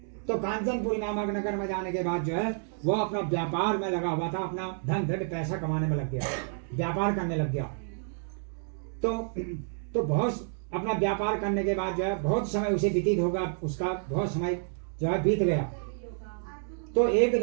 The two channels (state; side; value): silent; left; 58 dB below the other